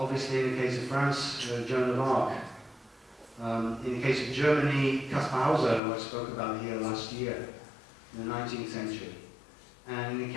in the case of France, Joan of Arc. In the case of Germany, Caspar Hauser, who I spoke about here last year, in the 19th century. And in the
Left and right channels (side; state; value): right; drops out; at 5.8 s